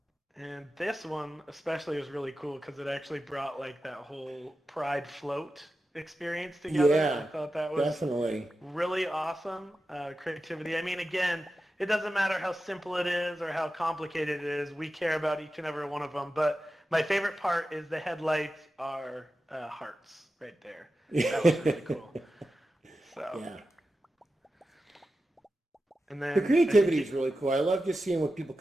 And this one especially was really cool because it actually brought that whole Pride float experience together. Yeah, I thought that was definitely. really awesome creativity. I mean, again, it doesn't matter how simple it is or how complicated it is. We care about each and every one of them. But my favorite part is the headlights are hearts right there. That was really cool. So. Yeah. And then The creativity is really cool. I love just seeing what people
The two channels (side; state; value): both; normal; correlation 0.92